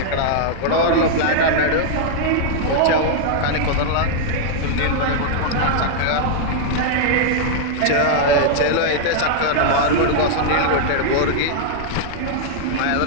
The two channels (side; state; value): both; different; correlation -0.01